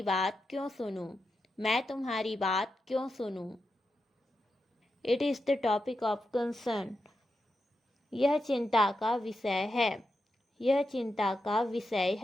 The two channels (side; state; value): both; normal; correlation 0.88